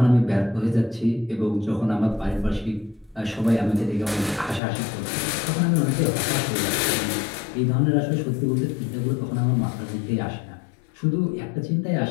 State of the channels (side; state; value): right; drops out; at 4.6 s